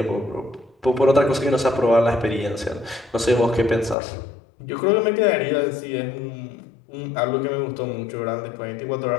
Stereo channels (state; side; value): drops out; right; at 4.0 s